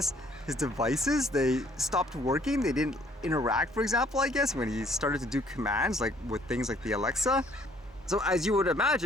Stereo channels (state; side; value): normal; both; correlation 0.61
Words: his devices, they stopped working. They didn't interact, for example, I guess, when he started to do commands, like with things like the Alexa. So as you would